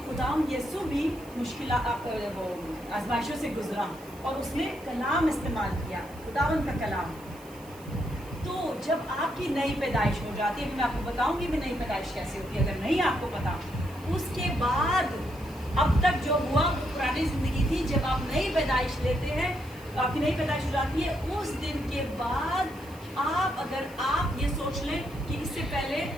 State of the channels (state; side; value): noise; right; hiss, 22 dB below the sound